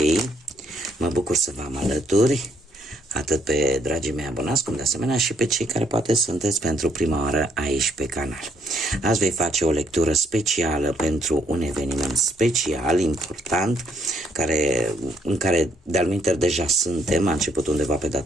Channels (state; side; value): normal; both; correlation 0.70